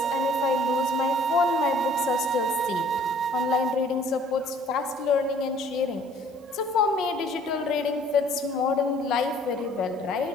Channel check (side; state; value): both; normal; correlation 0.56